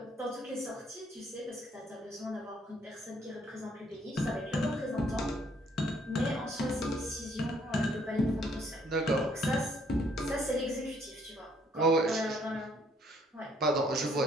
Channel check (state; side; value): normal; both; correlation 0.66